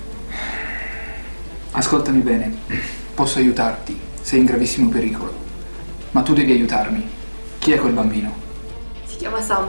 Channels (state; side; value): inverted; both; correlation -1.00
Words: Ascoltami bene, posso aiutarti, sei in gravissimo pericolo, ma tu devi aiutarmi. Chi è quel bambino? Si chiama